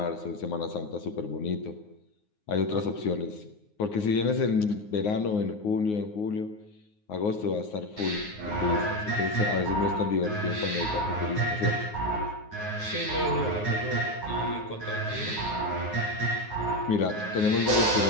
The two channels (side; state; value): right; late; 9.6 ms